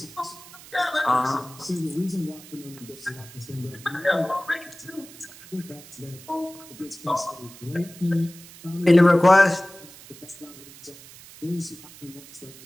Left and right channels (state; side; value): noise; right; hiss, 19 dB below the sound